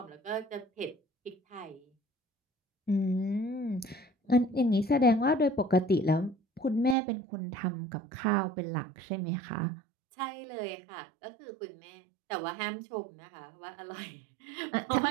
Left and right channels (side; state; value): left; drops out; at 7.0 s